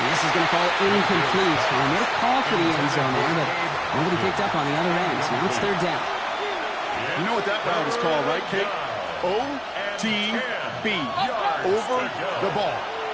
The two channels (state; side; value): identical; both; correlation 1.00